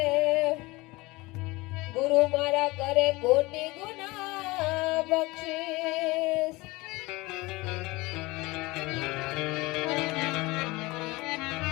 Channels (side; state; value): right; quieter; 22.1 dB